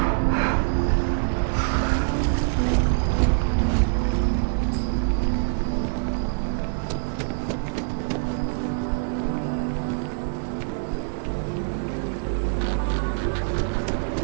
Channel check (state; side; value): silent; left; digital silence